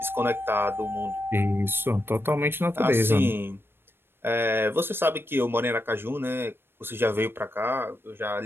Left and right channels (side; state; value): left; late; 0.11 ms